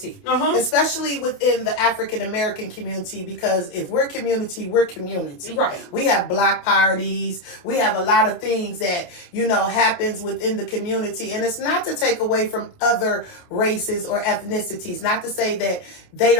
especially within the African American community, because if we're community, we're community. Right. We have block parties. We have a lot of things that, happens within the community. And it's not to take away from other races or ethnicities, not to say that they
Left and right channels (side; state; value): right; late; 28 ms